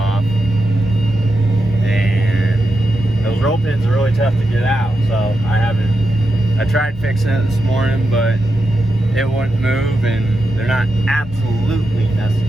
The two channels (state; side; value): normal; both; correlation 0.87